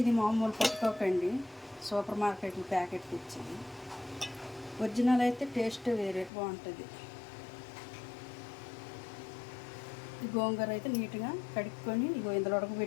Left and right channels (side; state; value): right; drops out; at 6.3 s